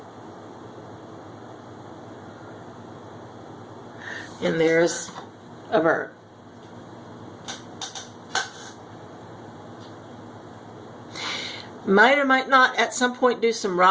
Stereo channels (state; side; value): identical; both; correlation 1.00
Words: And there's a bird. Might or might not at some point do some